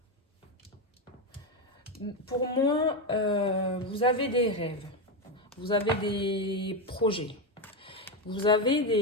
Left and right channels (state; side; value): normal; both; correlation 0.10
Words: Pour moi, vous avez des rêves. Vous avez des projets. Vous avez